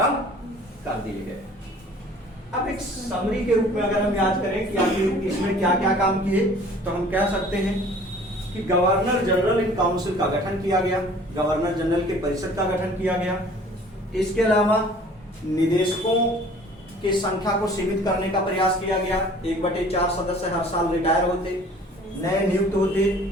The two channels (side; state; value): both; normal; correlation 0.50